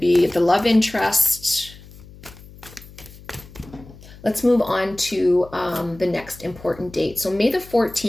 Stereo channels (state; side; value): noise; left; hum, 20 dB below the sound